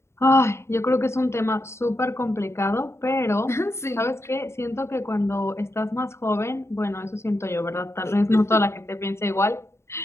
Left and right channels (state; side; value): late; right; 0.13 ms